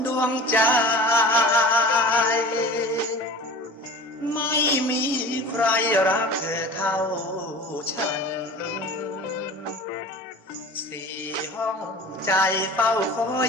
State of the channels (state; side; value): normal; both; correlation 0.39